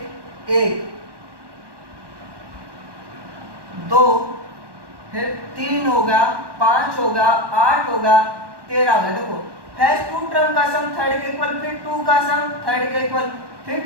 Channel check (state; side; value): late; left; 1.2 ms